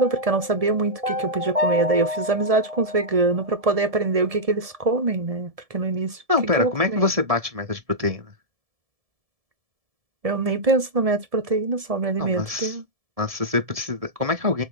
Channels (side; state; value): left; late; 1.7 ms